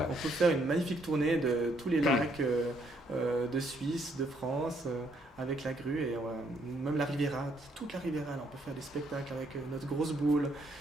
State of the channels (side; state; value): both; normal; correlation 0.71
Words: On peut faire une magnifique tournée de tous les lacs de Suisse, de France, avec la grue et même la Riviera, toute la Riviera. Là, on peut faire des spectacles avec notre grosse boule